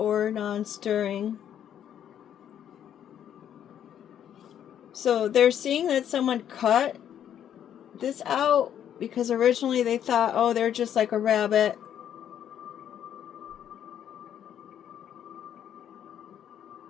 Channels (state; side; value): quieter; right; 9.8 dB